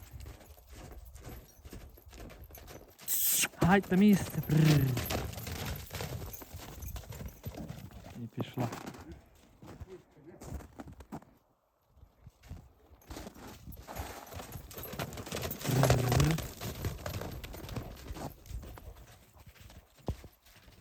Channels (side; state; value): both; identical; correlation 1.00